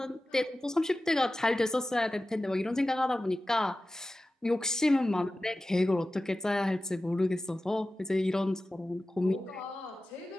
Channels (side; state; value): both; normal; correlation 0.95